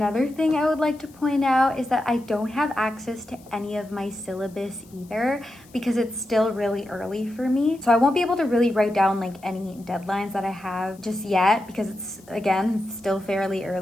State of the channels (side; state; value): left; noise; hiss, 27 dB below the sound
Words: thing I would like to point out is that I don't have access to any of my syllabus either, because it's still really early for me. So I won't be able to really write down like any deadlines that I have just yet, because it's, again, still fairly